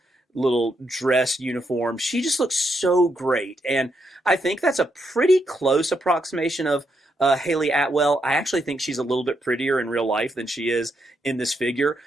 little dress uniform. She just looks so great. And I think that's a pretty close approximation of Haley Atwell. I actually think she's a little bit prettier in real life than she is in this figure,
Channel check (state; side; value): normal; both; correlation 0.79